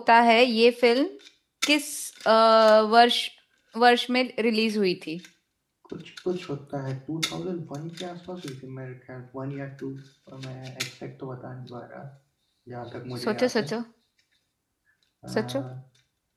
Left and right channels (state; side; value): identical; both; correlation 1.00